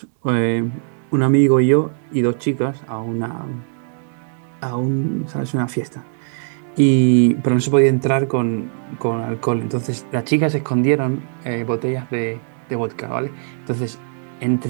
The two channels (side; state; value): left; silent; 66 dB below the other